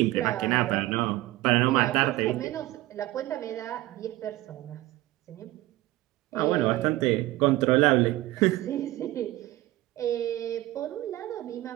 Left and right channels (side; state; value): left; quieter; 17.4 dB